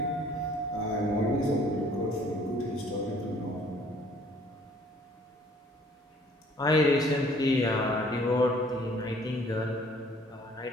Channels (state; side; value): normal; both; correlation 0.57